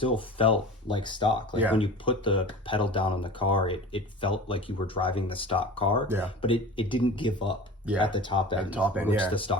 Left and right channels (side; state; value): both; normal; correlation 0.36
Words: felt like stock. Like when you put the pedal down on the car, it felt like you were driving the stock car, but it didn't give up at the top end, which the